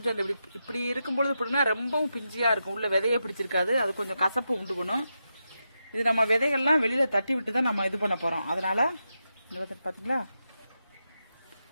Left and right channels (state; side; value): inverted; both; correlation -0.87